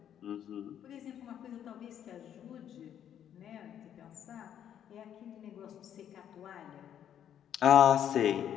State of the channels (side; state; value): right; quieter; 9.8 dB